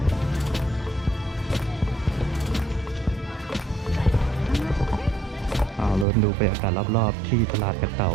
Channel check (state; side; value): drops out; left; at 6.1 s